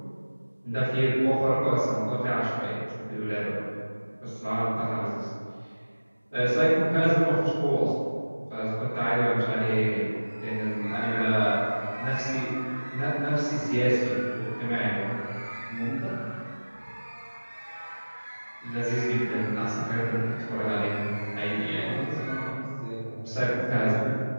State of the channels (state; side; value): inverted; both; correlation -1.00